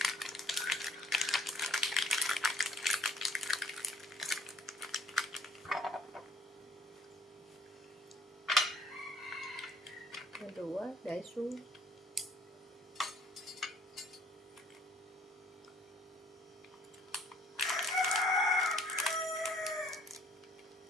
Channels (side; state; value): both; normal; correlation 0.60